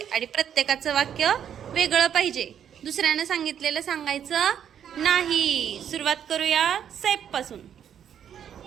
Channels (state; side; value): quieter; left; 9.1 dB